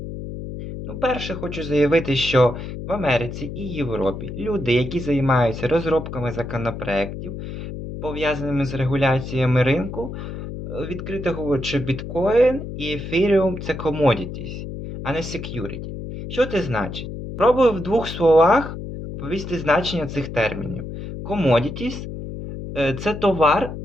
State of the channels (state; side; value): noise; left; hum, 8 dB below the sound